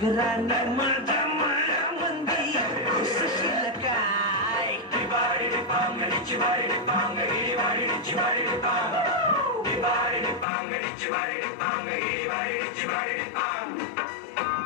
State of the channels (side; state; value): right; drops out; at 10.5 s